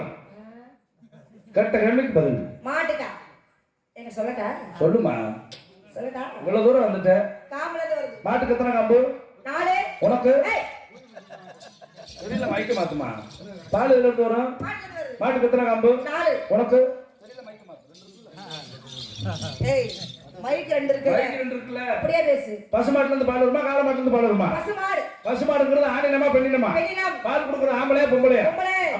கரெக்டா கேள்விக்கு பதில் மாட்டுக்கா என்ன சொல்லட்டா சொல்லுமா சொல்லட்டா இவ்வளவு தூரம் வந்துட்ட காம்புல இருந்து வருது மாட்டுக்கு எத்தனை காம்பு 4 உனக்கு தெரியல மைக்க மாத்துமா பால் எதுல இருந்து வரும் மாட்டுக்கு எத்தனை காம்பு 4 உனக்கு தெரியல மைக்க மாத்து ஏய் மைக் ரெண்டு இருக்கு மைக் ரெண்டு இருக்குல அப்படியே பேசு பசுமாட்டுல இருந்து பால் வருமா காளை மாட்டுல இருந்து பால் வருமா பசுமாடுங்கிறது ஆணினமா பெண்ணினமா பால் குடுக்குற ஆம்பளையா பொம்பளையா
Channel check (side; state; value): both; identical; correlation 1.00